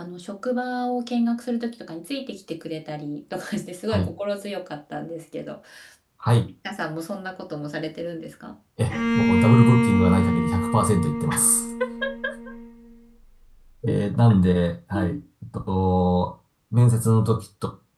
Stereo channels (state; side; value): identical; both; correlation 1.00